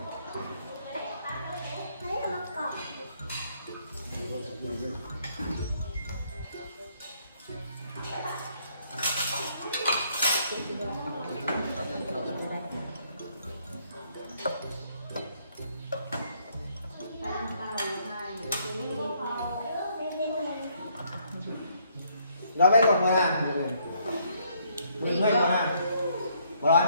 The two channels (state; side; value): inverted; both; correlation -0.68